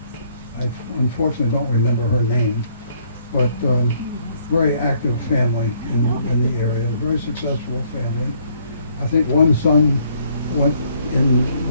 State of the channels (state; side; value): inverted; both; correlation -0.66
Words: I unfortunately don't remember her name, but very active family in the area, very successful family. I think one son went in